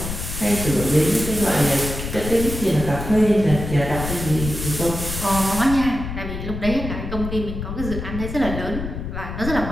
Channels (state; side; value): noise; left; rumble, 6 dB below the sound